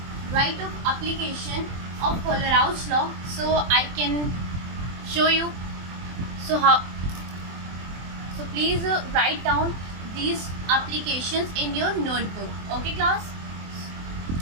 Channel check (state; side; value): late; left; 24 ms